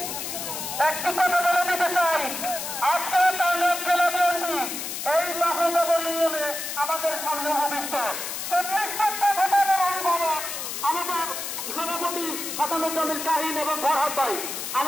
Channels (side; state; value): left; noise; hiss, 5 dB below the sound